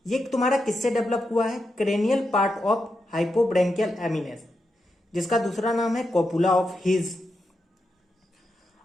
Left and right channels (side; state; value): both; normal; correlation 0.86